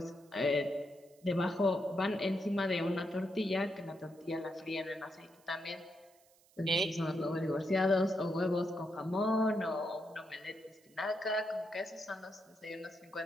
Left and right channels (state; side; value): noise; right; hiss, 30 dB below the sound